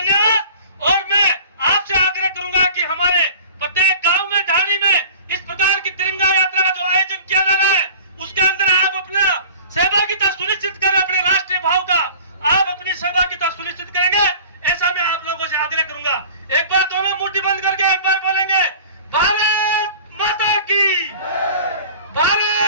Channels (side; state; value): both; inverted; correlation -0.43